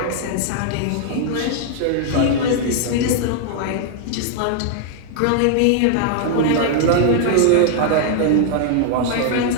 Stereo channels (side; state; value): both; different; correlation 0.00